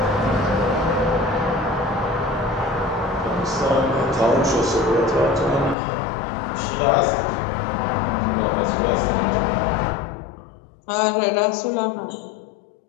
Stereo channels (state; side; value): drops out; right; at 5.8 s